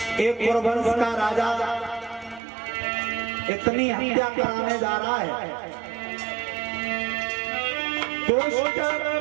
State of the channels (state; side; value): drops out; left; at 2.4 s